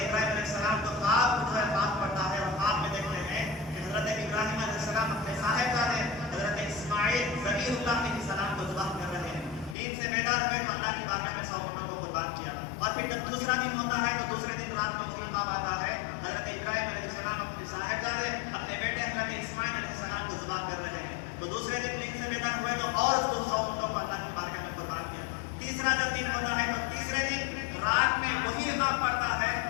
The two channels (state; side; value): drops out; right; at 9.8 s